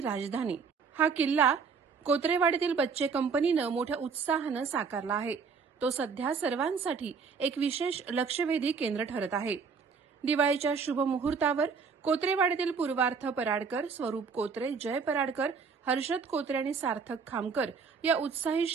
हा किल्ला कोत्रेवाडीतील बच्चे कंपनीने मोठ्या उत्साहाने साकारला आहे। तो सध्या सर्वांसाठी एक विशेष लक्षवेधी केंद्र ठरत आहे। दिवाळीच्या शुभ मुहूर्तावर कोत्रेवाडीतील पूर्वार्थ पराडकर, स्वरूप कोत्रे, जय पराडकर, हर्षद कोत्रे आणि सार्थक खामकर या उत्साही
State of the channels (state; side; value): quieter; left; 5.5 dB